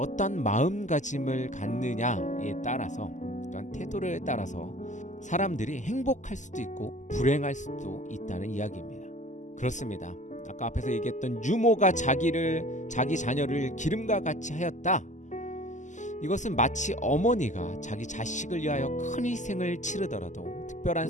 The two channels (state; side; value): late; right; 0.35 ms